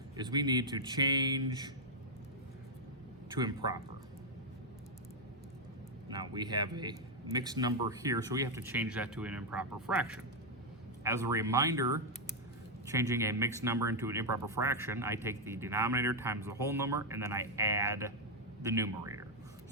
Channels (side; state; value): both; normal; correlation -0.01